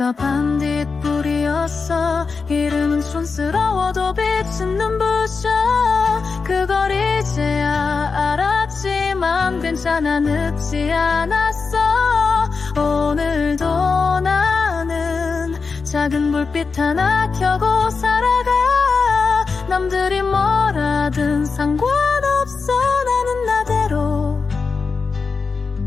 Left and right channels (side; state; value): right; quieter; 4.8 dB